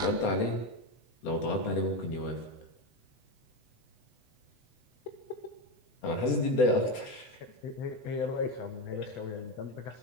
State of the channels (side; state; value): right; late; 8.0 ms